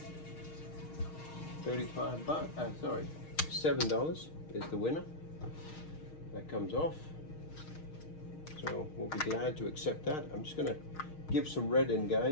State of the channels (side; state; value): right; late; 6.4 ms